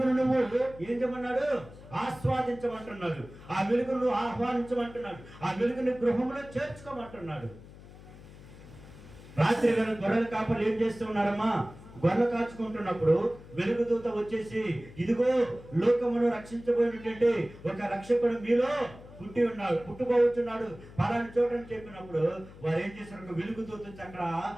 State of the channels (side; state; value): left; noise; hum, 18 dB below the sound